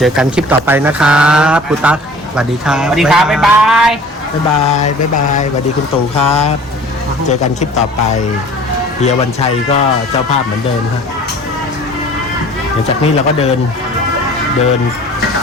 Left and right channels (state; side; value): normal; both; correlation 0.47